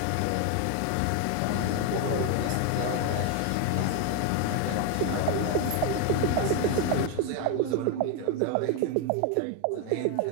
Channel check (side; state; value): both; different; correlation 0.01